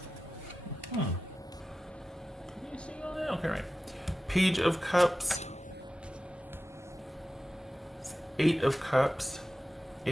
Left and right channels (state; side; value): normal; both; correlation 0.94